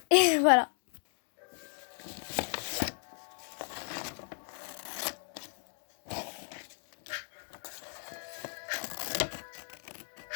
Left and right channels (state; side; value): silent; right; 55 dB below the other